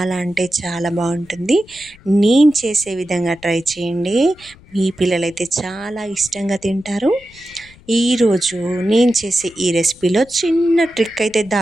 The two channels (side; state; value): left; noise; rumble, 25 dB below the sound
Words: అంటే చాలా బాగుంటుంది. నేను చేసే విధంగా ట్రై చేయండి. మీ పిల్లలైతే చాలా ఇష్టంగా తింటారు. ఈరోజు నేను చేసే ఈ రెసిపీలో చిన్న ట్రిక్ అయితే